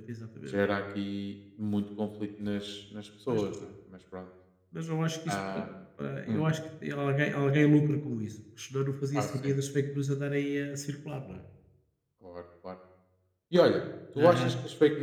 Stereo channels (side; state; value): both; identical; correlation 1.00